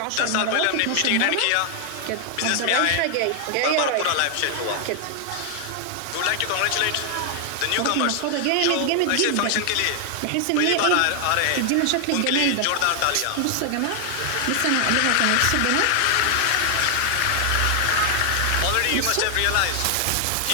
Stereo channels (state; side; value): different; both; correlation 0.00